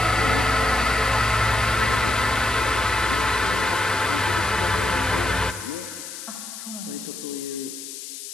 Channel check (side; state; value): left; noise; hiss, 11 dB below the sound